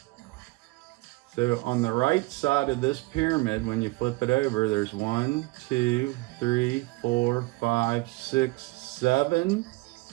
So on the right side of this pyramid, when you flip it over, there's 1, 2, 3, 4, 5, 6, 7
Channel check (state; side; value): quieter; left; 22.8 dB